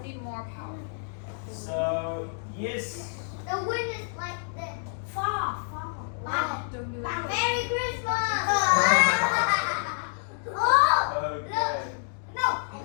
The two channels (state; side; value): silent; right; digital silence